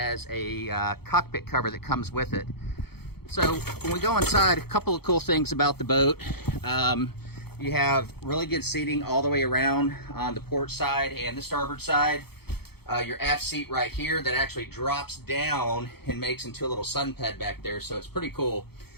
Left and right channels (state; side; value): late; right; 0.96 ms